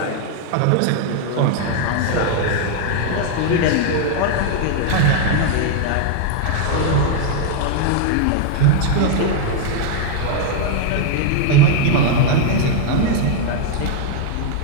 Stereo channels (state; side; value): different; both; correlation 0.00